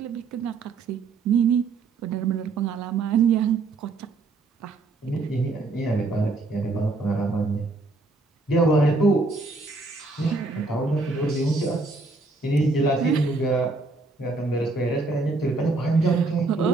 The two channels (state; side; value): quieter; left; 3.6 dB